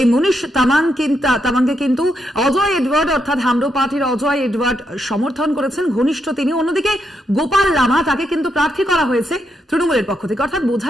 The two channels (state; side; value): normal; both; correlation 0.81